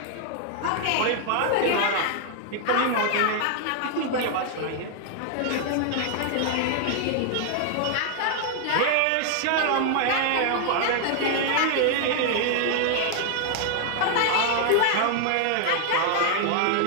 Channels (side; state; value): both; different; correlation 0.00